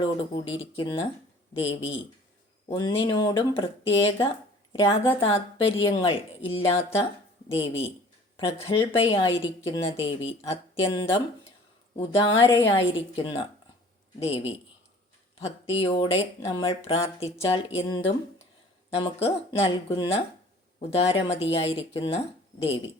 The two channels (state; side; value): normal; both; correlation 0.49